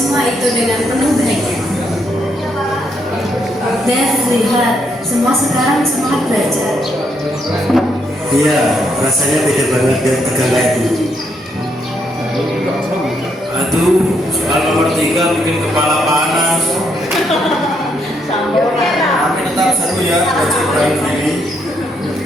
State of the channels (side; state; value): both; normal; correlation 0.75